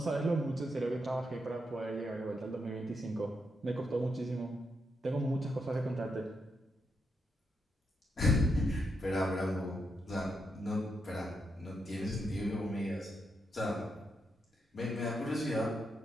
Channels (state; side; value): normal; both; correlation 0.82